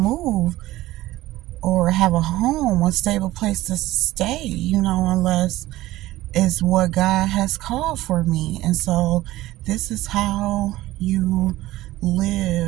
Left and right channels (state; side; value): quieter; left; 16.7 dB